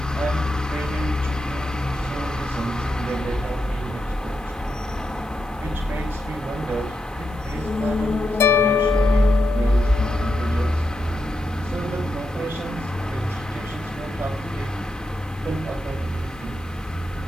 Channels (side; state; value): right; noise; hiss, 27 dB below the sound